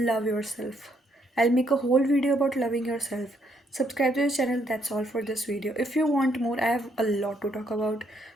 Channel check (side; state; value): both; normal; correlation 0.72